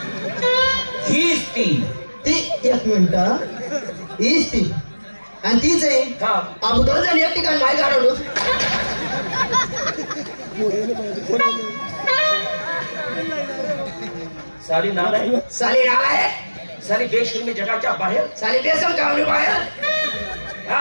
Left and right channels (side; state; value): both; inverted; correlation -1.00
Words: हीच ती. एक मिनिट हीच ती आणि तीच आहे. आपण दोन जण एक ठिकाणी नाही काढवलो. साली नाल आहे साली बेशर्मी जगाच्या बाहेर साली बेसन कावली बाहेर.